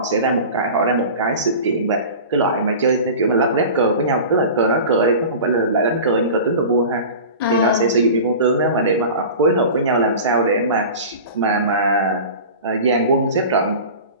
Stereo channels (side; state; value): both; inverted; correlation -0.35